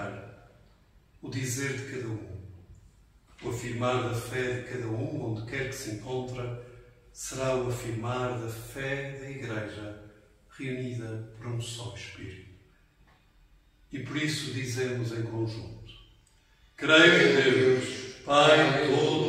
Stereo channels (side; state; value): both; identical; correlation 1.00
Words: o dizer de cada um, o afirmar da fé de cada um, onde quer que se encontra, será o afirmar da fé da Igreja reunida por um só Espírito. E por isso dizemos em conjunto: creio em Deus, Pai